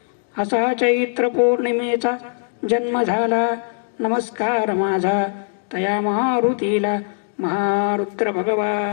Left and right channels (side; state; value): right; silent; digital silence